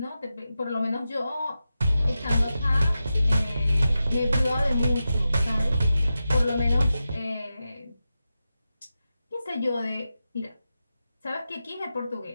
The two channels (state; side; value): inverted; both; correlation -0.91